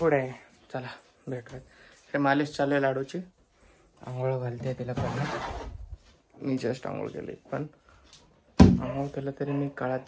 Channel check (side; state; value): both; identical; correlation 1.00